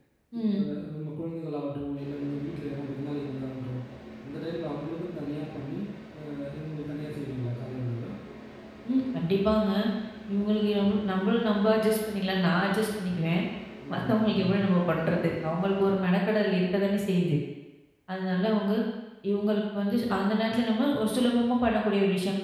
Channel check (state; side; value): identical; both; correlation 1.00